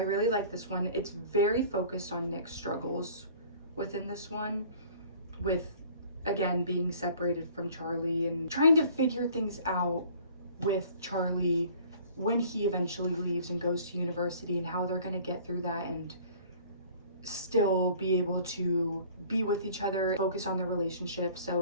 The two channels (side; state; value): both; inverted; correlation -0.50